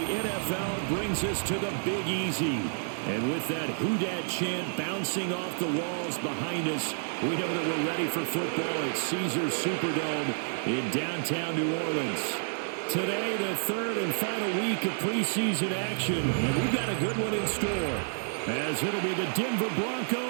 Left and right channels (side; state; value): left; silent; 58 dB below the other